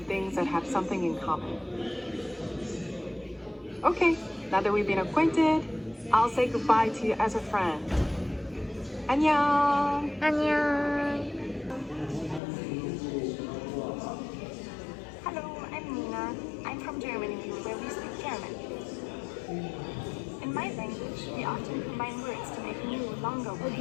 that have something in common. Okay, now that we've been acquainted, I'll say goodbye to you as a friend. 안녕. 안녕. Hello, I'm Nina. I'm from Germany, where we speak German. In my language, we often combine words to make new, longer words.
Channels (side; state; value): right; drops out; at 12.4 s